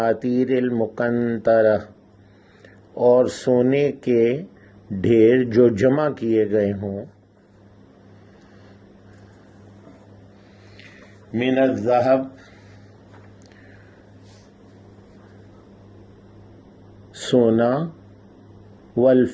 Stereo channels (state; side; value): identical; both; correlation 1.00